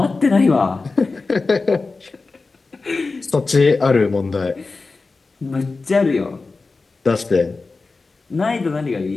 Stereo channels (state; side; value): quieter; right; 3.9 dB